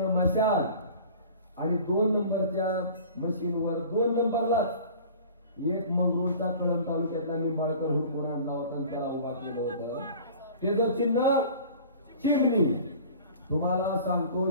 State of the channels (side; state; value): both; inverted; correlation -0.43